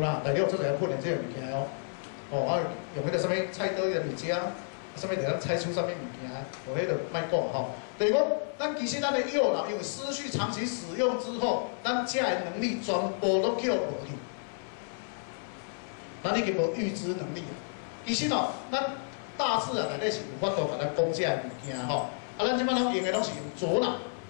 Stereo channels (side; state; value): right; silent; 57 dB below the other